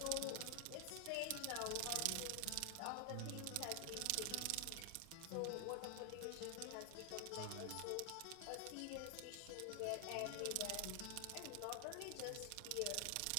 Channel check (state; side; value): different; both; correlation 0.00